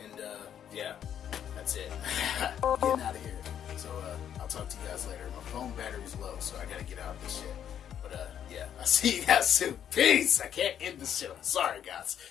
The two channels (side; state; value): right; quieter; 9.4 dB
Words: And, yeah. That's it. I'm getting out of here. So, I'll talk to you guys later. My phone battery's low, so I gotta get out of this shit. But, yeah. I'll see you guys soon. Peace! I can't end this shit. I'm sorry, guys.